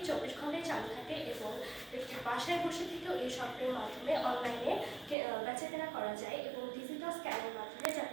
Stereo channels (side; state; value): left; drops out; at 5.2 s